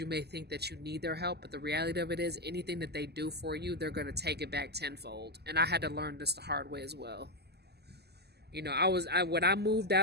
may think that you need their help, but the reality of it is, anything that they do for you, they're going to take it back tenfold. And I had to learn this the hard way as well. When I moved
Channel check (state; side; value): late; left; 0.47 ms